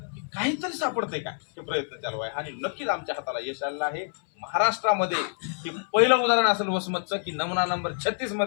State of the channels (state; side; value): silent; right; 59 dB below the other